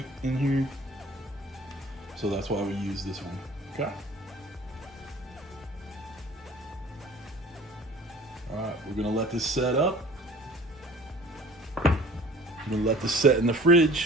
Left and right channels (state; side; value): normal; both; correlation 0.47